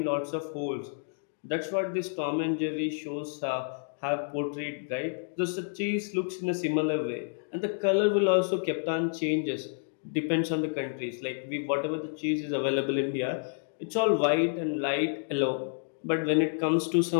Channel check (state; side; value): silent; right; digital silence